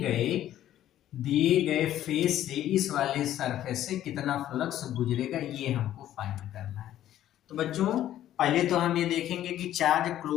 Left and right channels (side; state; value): right; quieter; 12.4 dB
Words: गए फेस से इस वाले सरफेस से कितना फ्लक्स गुजरेगा, ये हमको फाइंड करना है। तो बच्चों पहले तो हम ये देखेंगे कि चार्ज